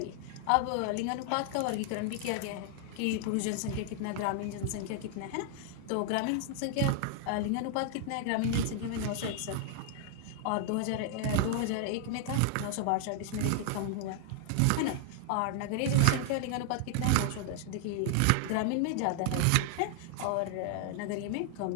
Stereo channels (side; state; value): both; different; correlation 0.00